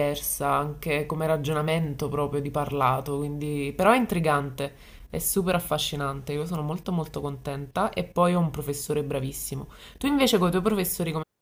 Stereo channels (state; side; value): identical; both; correlation 1.00